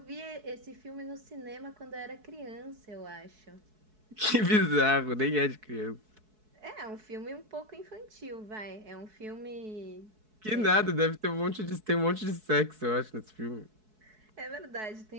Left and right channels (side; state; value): left; late; 4.7 ms